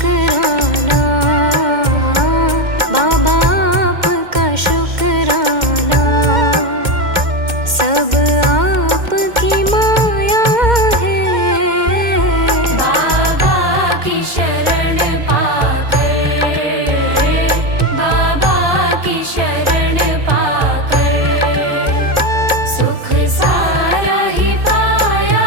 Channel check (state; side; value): late; left; 2.1 ms